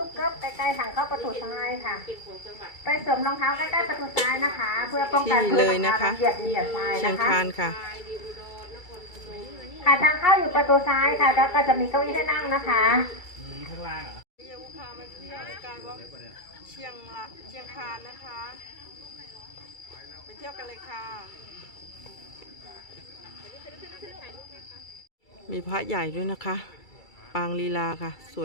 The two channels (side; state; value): right; late; 2.3 ms